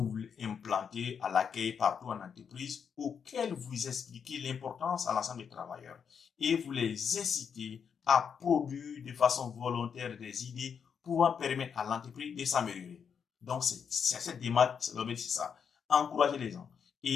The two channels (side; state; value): right; quieter; 7.0 dB